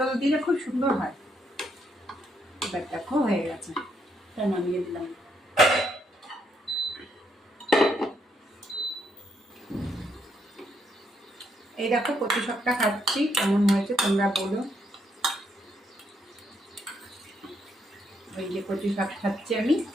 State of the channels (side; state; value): both; normal; correlation 0.75